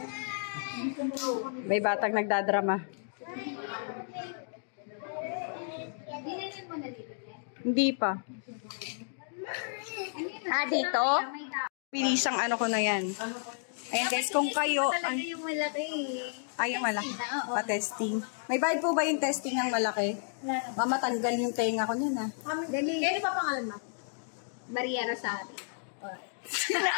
May batang nagdadrama. Dinilin mo na dito. Hindi pa. Dito? May tao. Pilisang ano ko na yan. Ayan guys, kung kayo... Talaga yung malaki. Ay, yung malaki. Pa-testing. May bayad po ba yung testing ng malaki? Mamatanggal yung tenga ko niyan, ha? Dali. Ano pa pangalan mo? Maria Rosario.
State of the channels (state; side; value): silent; right; digital silence